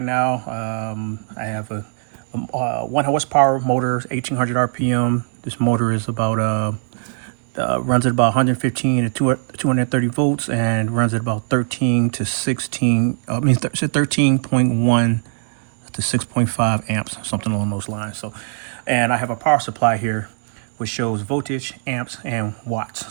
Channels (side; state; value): left; silent; 65 dB below the other